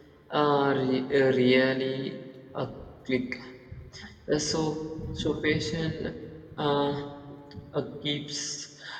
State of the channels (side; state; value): both; identical; correlation 1.00